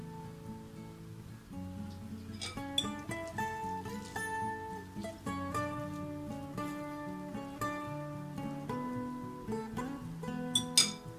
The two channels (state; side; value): identical; both; correlation 1.00